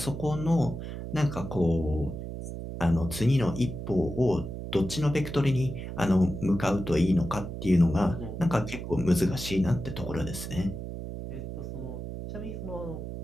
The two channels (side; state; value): right; noise; hum, 7 dB below the sound